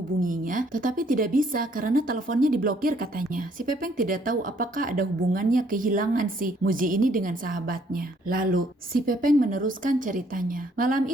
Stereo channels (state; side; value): normal; both; correlation 0.65